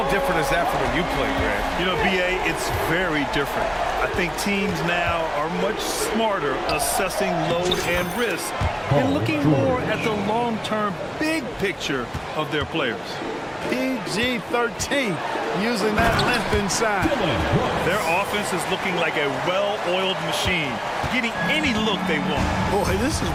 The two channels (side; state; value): both; identical; correlation 1.00